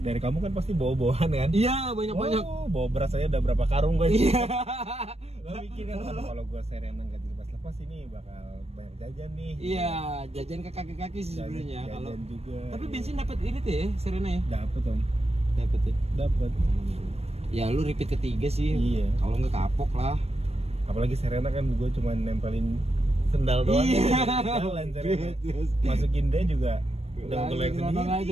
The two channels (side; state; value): left; late; 0.30 ms